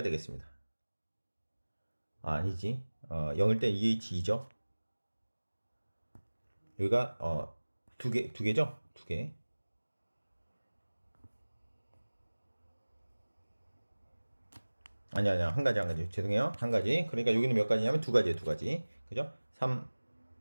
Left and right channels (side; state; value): both; inverted; correlation -1.00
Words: 되겠습니다. 아니지. 0일 때 2H2죠. 여기가 두 개죠? 두 개. 아니야. 한 가지. 죄송해요. 한 가지. 그러니까 여기는 몇 가지냐면 두 가지예요, 두 가지. 그죠? 3